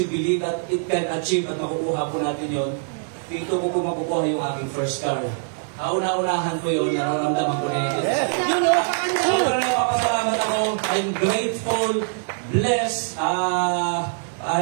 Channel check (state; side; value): silent; left; digital silence